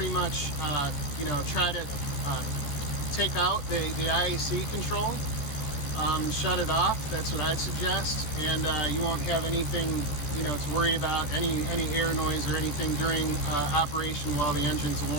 much you know, try to take out the IAC control, shut it off. That's what I'd suggest, and you won't have anything, you know, to worry about, any air noise or anything during operation while the engine's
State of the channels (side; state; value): right; late; 13 ms